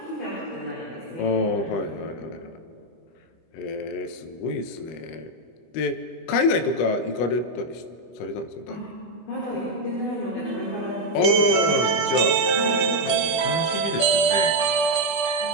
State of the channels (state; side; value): late; right; 24 ms